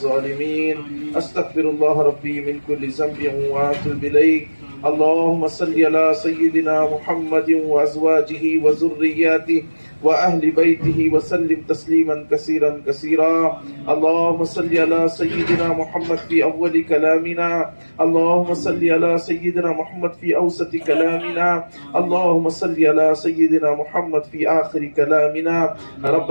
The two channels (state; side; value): inverted; both; correlation -1.00